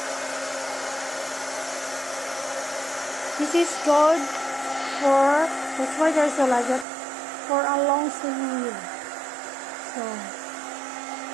this is good for, that's why they're so like that, for a long sleeve. So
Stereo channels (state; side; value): drops out; left; at 6.9 s